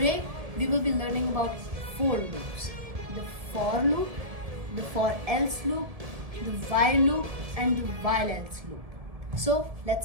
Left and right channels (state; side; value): late; left; 1.7 ms